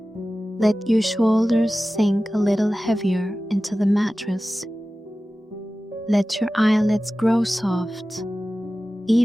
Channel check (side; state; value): both; normal; correlation 0.96